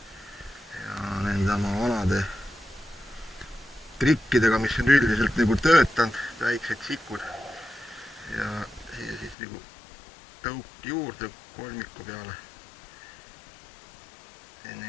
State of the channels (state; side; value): drops out; right; at 9.3 s